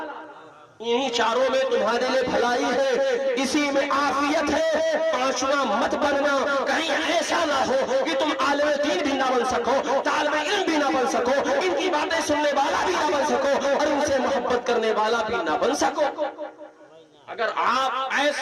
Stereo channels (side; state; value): both; identical; correlation 1.00